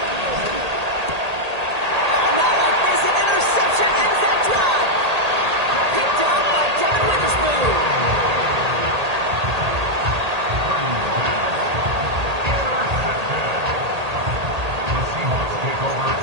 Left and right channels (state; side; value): late; left; 1.8 ms